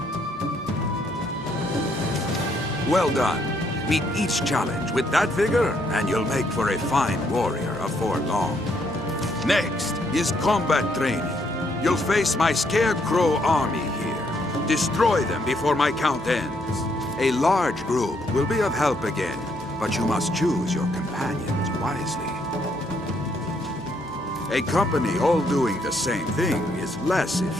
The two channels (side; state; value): both; normal; correlation 0.72